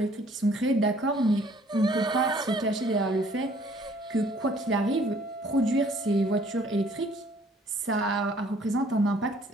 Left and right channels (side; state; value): both; normal; correlation 0.59